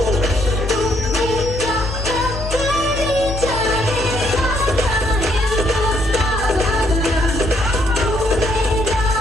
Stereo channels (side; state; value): left; noise; hum, 7 dB below the sound